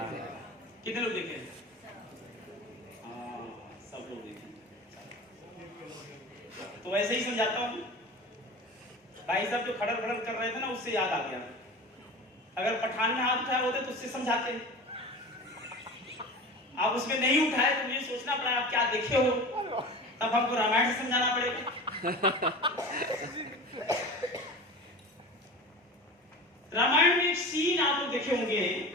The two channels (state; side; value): normal; both; correlation 0.34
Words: कितने लोग देखे? हाँ, सब लोग देखे। तो ऐसे ही समझाता हूँ। भाई साहब जो खड़र खड़र कर रहे थे ना, उससे याद आ गया। अगर पठान में हाथ उठाए होते तो उससे समझाते। आप उसमें नहीं उठाए तो मुझे सोचना पड़ा आप क्या देखे हो, तब हमको रामायण से समझाना पड़ेगा। रामायण में एक सीन आप लोग देखे होंगे